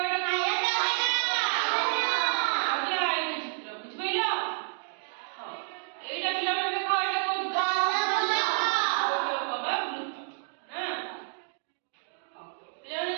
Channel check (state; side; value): silent; left; digital silence